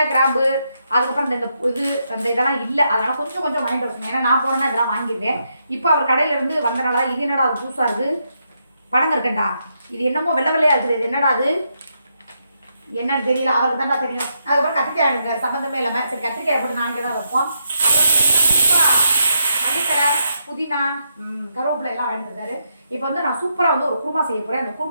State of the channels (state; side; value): inverted; both; correlation -0.81